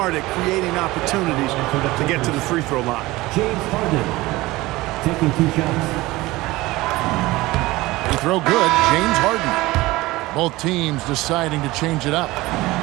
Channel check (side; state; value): left; quieter; 19.5 dB